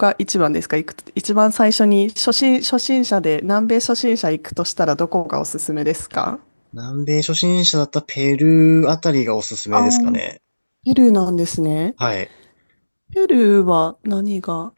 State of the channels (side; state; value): both; inverted; correlation -1.00